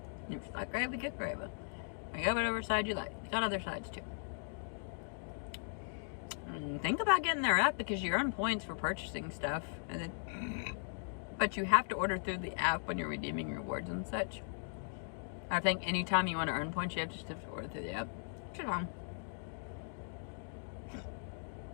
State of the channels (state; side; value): silent; right; digital silence